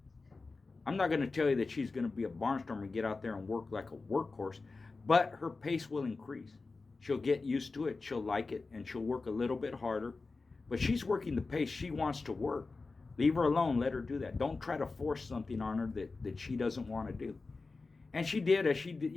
I'm not going to tell you that she's going to be a barnstormer and get out there and work like a workhorse, but her pace will increase. She'll get used to it. She'll like it, and she'll work a little bit harder. But she's working the pace she wants to work. Leave her alone. Let her do that. Don't try to force something on her that she doesn't want to do. And she did, as she did,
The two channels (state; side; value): quieter; right; 3.9 dB